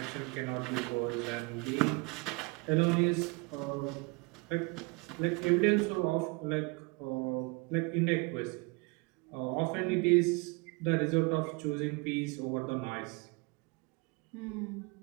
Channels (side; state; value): left; quieter; 28.7 dB